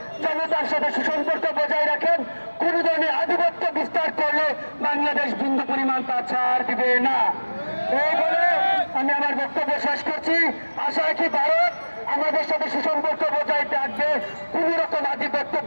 জনতার সাথে সুসম্পর্ক বজায় রাখেন। কোন ধরনের আধিপত্য বিস্তার করলে বাংলাদেশ বিন্দু পরিমাণ তা ছাড় দিবে না। এই বলে আমি আমার বক্তব্য শেষ করছি। আশা রাখি ভারত আমাদের সাথে সুসম্পর্ক বজায় রাখবে, কোন রকম আধিপত্য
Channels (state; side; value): inverted; both; correlation -1.00